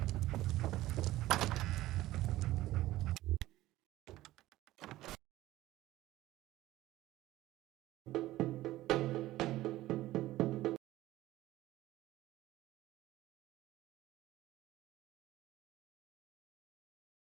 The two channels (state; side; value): quieter; left; 16.0 dB